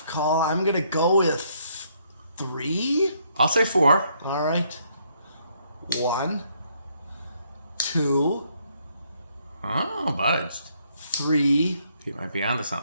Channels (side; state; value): both; inverted; correlation -0.70